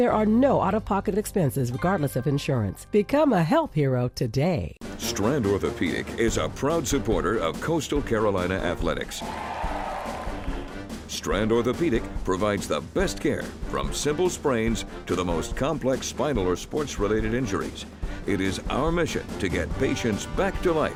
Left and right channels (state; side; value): identical; both; correlation 1.00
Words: are no out-of-pocket expenses regardless of insurance. Become a health hero today. Strand Orthopedic is a proud supporter of Coastal Carolina athletics. Strand Orthopedic provides the best care from simple sprains to the most complex spinal or sports-related injuries. It is our mission to get patients back to